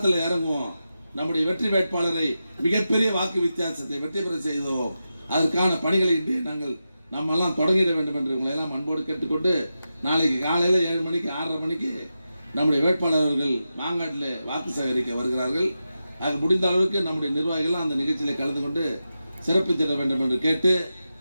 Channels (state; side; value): inverted; both; correlation -0.91